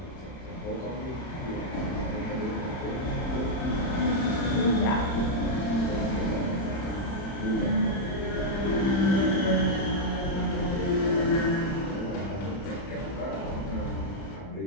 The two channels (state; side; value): late; right; 31 ms